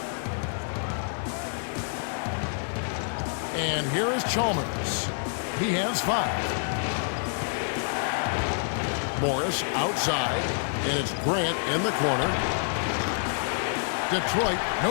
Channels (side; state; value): right; silent; digital silence